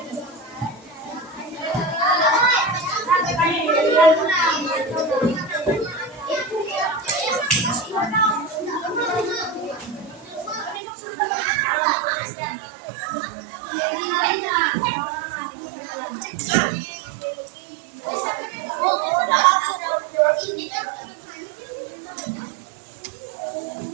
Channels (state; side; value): drops out; left; at 10.8 s